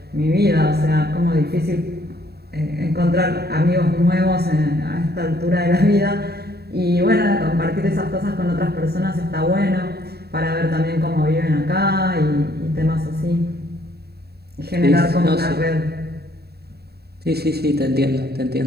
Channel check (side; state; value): left; late; 0.47 ms